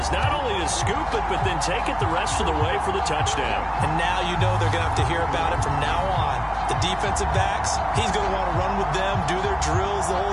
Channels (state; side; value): identical; both; correlation 1.00